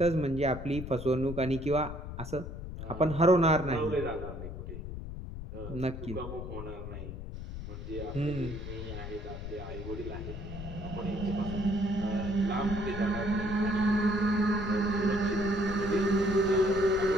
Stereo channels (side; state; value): left; noise; rumble, 8 dB below the sound